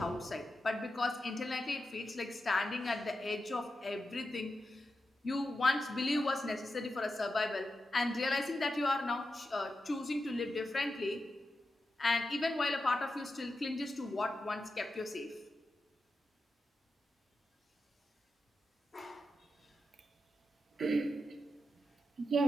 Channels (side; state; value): both; normal; correlation 0.89